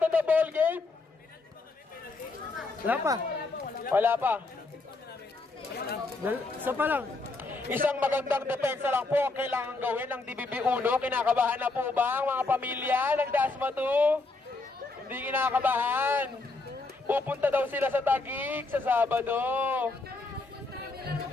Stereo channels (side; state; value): right; quieter; 3.5 dB